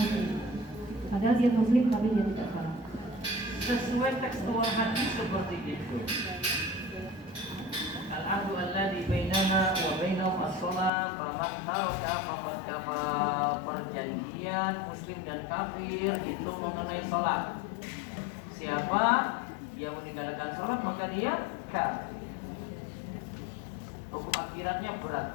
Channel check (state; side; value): drops out; right; at 10.9 s